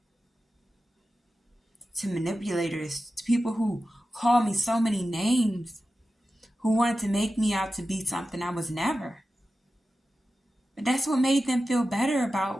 To manipulators, to people who called me so many names, who wanted to make me out to be something I was never. But that's what made them feel better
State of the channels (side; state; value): both; normal; correlation 0.93